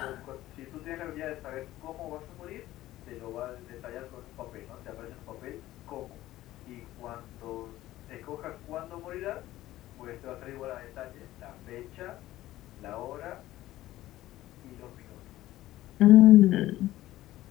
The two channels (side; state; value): right; quieter; 15.5 dB